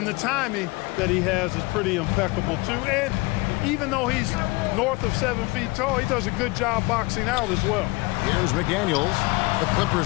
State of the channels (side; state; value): right; quieter; 23.9 dB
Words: the timing that he has is pretty impeccable too. And even though he's north of 7 feet tall, he does a good job boxing out as well. Here's McDaniels. The